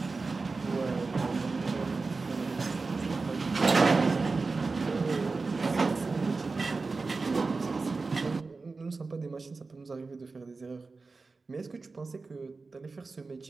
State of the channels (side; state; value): left; quieter; 4.0 dB